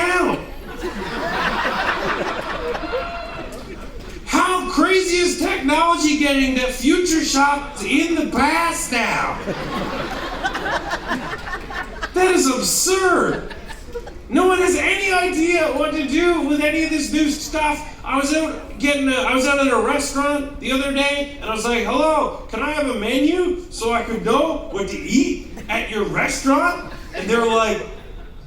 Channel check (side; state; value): both; identical; correlation 1.00